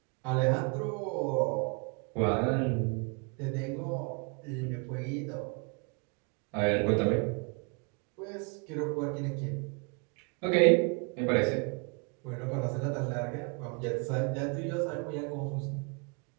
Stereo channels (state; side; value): quieter; left; 34.6 dB